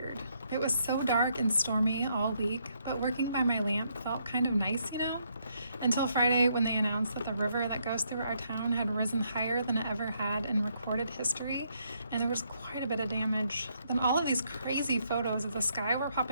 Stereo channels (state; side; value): inverted; both; correlation -0.74